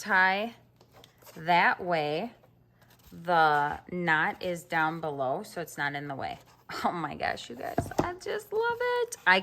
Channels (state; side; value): identical; both; correlation 1.00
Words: That way, the knot is down below, so it's not in the way. Oh my gosh, you guys, I just love it. I